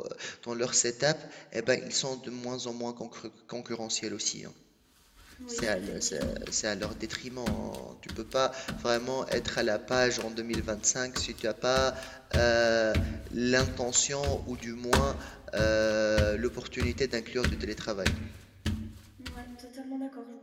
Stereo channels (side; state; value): both; identical; correlation 1.00